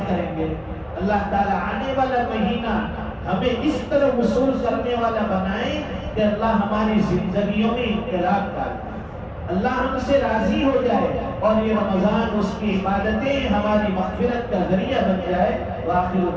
کریں گے۔ اللہ تعالیٰ آنے والا مہینہ ہمیں اس طرح وصول کرنے والا بنائے کہ اللہ ہماری زندگیوں میں انقلاب ڈالے، اللہ ہم سے راضی ہو جائے، اور یہ رمضان اس کی عبادتیں ہماری مغفرت کا ذریعہ بن جائے۔ وآخر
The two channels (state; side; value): identical; both; correlation 1.00